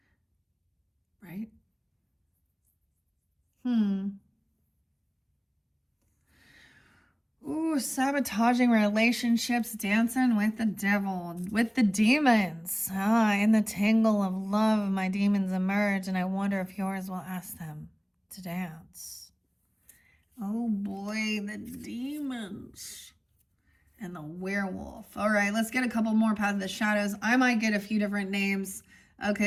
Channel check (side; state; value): both; identical; correlation 1.00